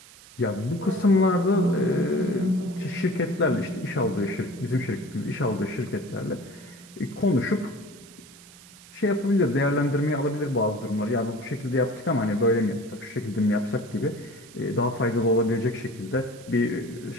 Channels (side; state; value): right; noise; hiss, 21 dB below the sound